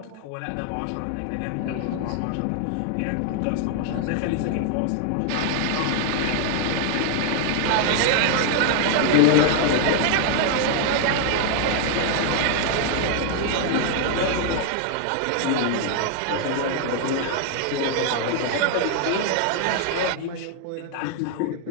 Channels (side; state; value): both; different; correlation 0.00